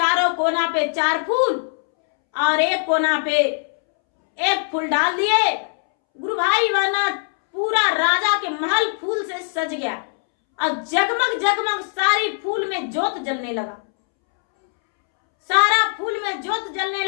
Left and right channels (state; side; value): silent; right; 65 dB below the other